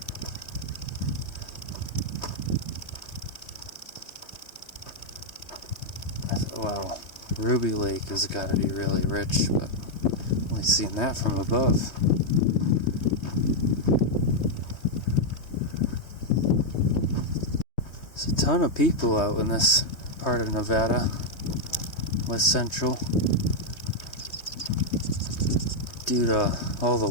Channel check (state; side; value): late; right; 3.2 ms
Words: Wow, Ruby Lake has got to be really rich, but only seen that from above. There's a ton of people out in this part of Nevada. West Central, due to all the